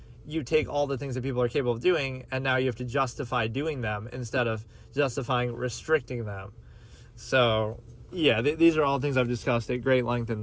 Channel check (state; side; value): identical; both; correlation 1.00